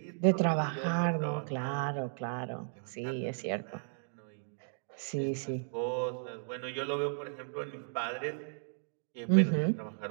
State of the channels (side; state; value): left; silent; digital silence